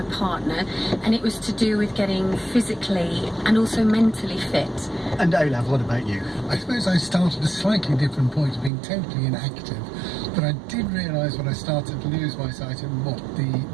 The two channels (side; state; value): left; drops out; at 8.7 s